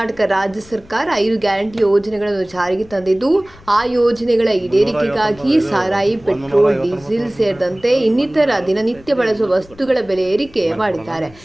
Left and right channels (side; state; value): left; noise; rumble, 24 dB below the sound